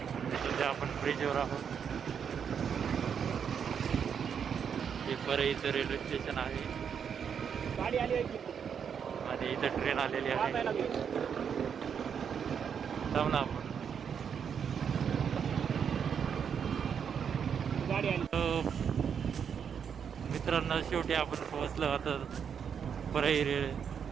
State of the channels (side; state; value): left; quieter; 7.4 dB